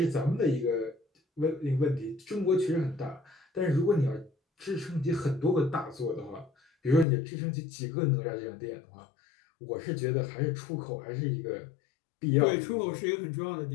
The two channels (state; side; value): drops out; right; at 7.1 s